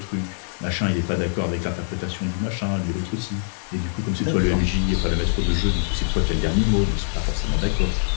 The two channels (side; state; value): right; silent; digital silence